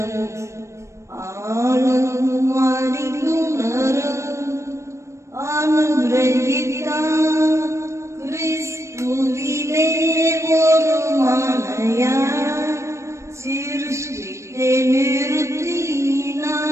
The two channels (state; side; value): late; left; 0.14 ms